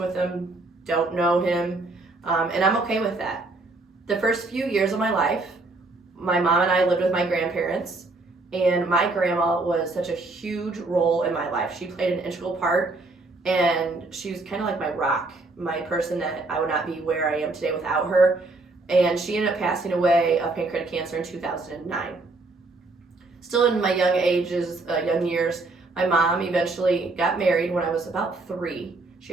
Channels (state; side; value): quieter; left; 3.3 dB